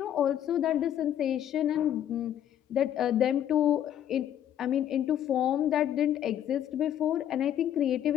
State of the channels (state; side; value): quieter; right; 10.6 dB